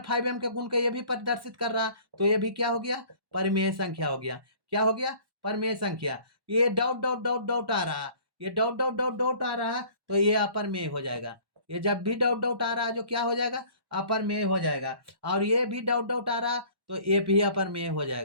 5m के गुण के ये भी प्रदर्शित कर रहा, तो ये भी क्या हो गया, परिमेय संख्या हो गया। क्या हो गया, परिमेय संख्या। ये डॉट डॉट डॉट डॉट आ रहा, ये डॉट डॉट डॉट डॉट आ रहा, तो ये अपरमेय हो जाएगा। ये जब भी डॉट डॉट आ रहा है जो क्या हो जाएगा, अपरमेय हो जाएगा। और ये भी डॉट डॉट आ रहा तो ये भी अपरमेय हो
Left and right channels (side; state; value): left; late; 1.1 ms